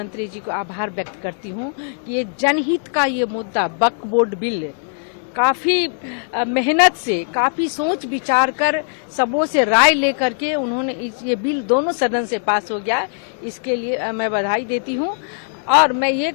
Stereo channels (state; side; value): silent; right; digital silence